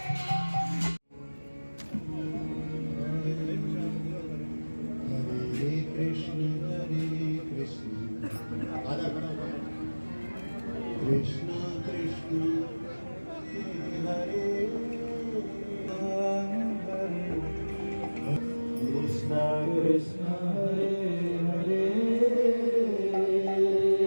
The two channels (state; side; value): inverted; both; correlation -1.00